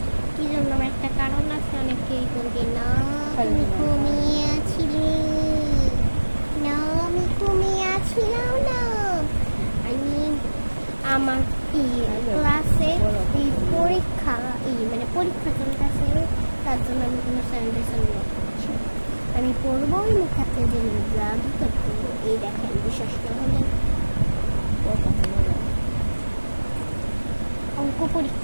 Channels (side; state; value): both; inverted; correlation -1.00